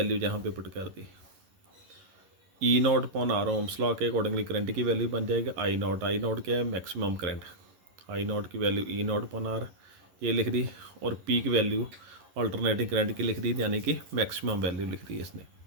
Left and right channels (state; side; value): late; left; 11 ms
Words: जहाँ पे पुट कर दी E not upon R, Ohm's law के अकॉर्डिंगली करंट की वैल्यू बन जाएगा आई नॉट क्या है, मैक्सिमम करंट। आई नॉट की value E not upon R ये लिख दी, और पी की वैल्यू अल्टरनेटिंग करंट की लिख दी, यानी कि मैक्सिमम वैल्यू लिख दी इसने।